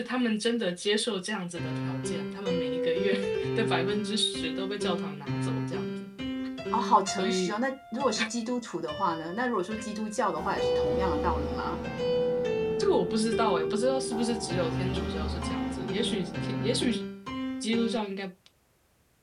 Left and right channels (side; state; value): both; identical; correlation 1.00